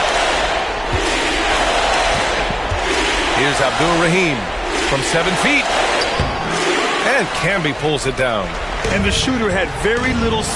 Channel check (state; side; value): identical; both; correlation 1.00